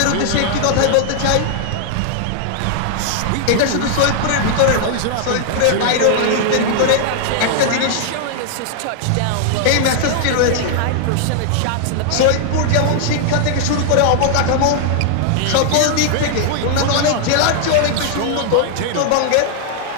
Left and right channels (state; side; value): different; both; correlation 0.00